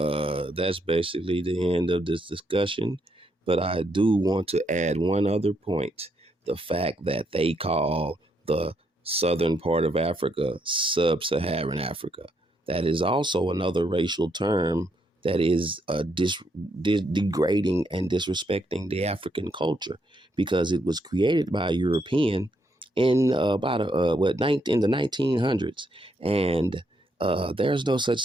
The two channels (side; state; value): both; normal; correlation 0.76